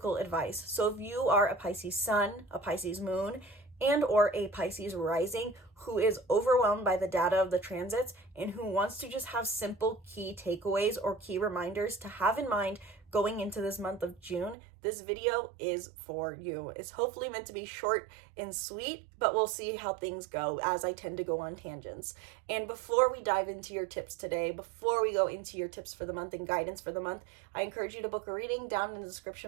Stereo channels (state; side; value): drops out; left; at 14.6 s